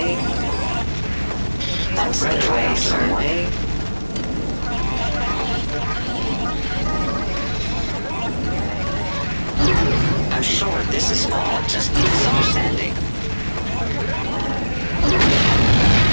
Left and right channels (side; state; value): both; inverted; correlation -1.00